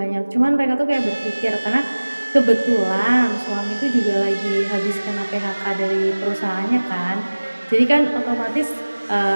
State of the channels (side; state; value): both; inverted; correlation -1.00